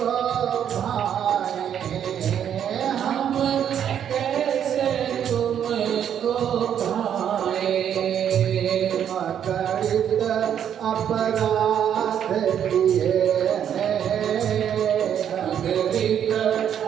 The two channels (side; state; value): left; quieter; 9.2 dB